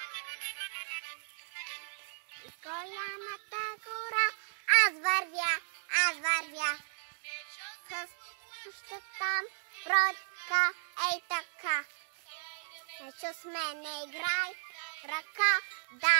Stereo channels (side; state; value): left; silent; digital silence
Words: Из голямата гора аз вървя. Още там бродка, ей така. Ечо с мене играй, ръка